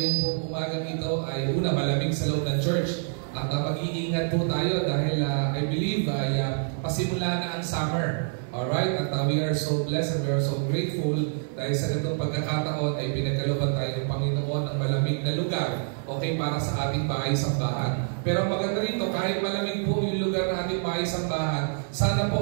po umagang ito ay una malamig sa loob ng church. At mag-iingat po tayo dahil I believe ay pasimula na ang summer. Alright? At we are so blessed and we are so grateful dahil sa ganitong pagkakataon ay pinagkalooban tayo ng Panginoon ng malamig na lugar, okay, para sa ating bahay-sambahan. Pero maganda rito, kahit malamig po yung lugar na ating bahay-sambahan, sana po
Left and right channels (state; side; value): silent; left; digital silence